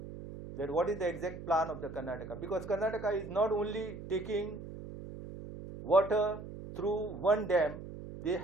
that what is the exact plan of the Karnataka, because Karnataka is not only taking water through one dam, they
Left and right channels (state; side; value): noise; right; hum, 11 dB below the sound